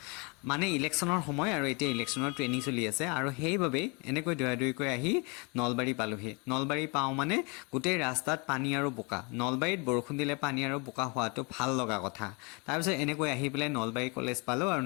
মানে ইলেকশ্যনৰ সময় আৰু এতিয়া ইলেকশ্যনৰ ট্ৰেইনিং চলি আছে আৰু সেইবাবেই এনেকৈ দৌৰাই আহি নলবাৰী পালোঁহি। নলবাৰী পাওঁ মানে গোটেই ৰাস্তাত পানী আৰু বোকা। নলবাৰীত বৰষুণ দিলে পানী আৰু বোকা হোৱাটো ভাল লগা কথা। তাৰপিছত এনেকৈ আহি পেলাই নলবাৰী কলেজ পালোঁ আৰু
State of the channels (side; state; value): right; quieter; 30.7 dB